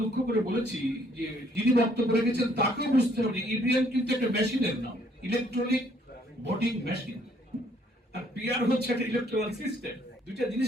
দুঃখ করে বলেছি যে যিনি বক্তব্য রেখেছেন তাকেও বুঝতে হবে ইভিএম কিন্তু একটা মেশিনের নাম, ইলেকট্রনিক ভোটিং মেশিন, আর পিআর হচ্ছে একটা ইলেকট্রাল সিস্টেম। দুইটা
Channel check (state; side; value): normal; both; correlation 0.64